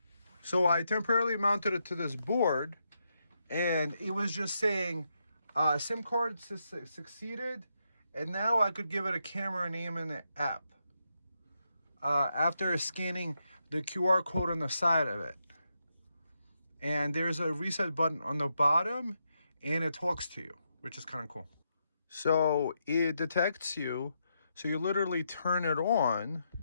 So I temporarily mounted it to this board, and it was just saying SIM card succeeded, and now I could give it a camera name in the app after scanning the QR code on the side of it. And there's a reset button on the bottom, and it talks to you, which is kind of cool. So it detects you, so you literally turn it on,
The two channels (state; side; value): inverted; both; correlation -0.82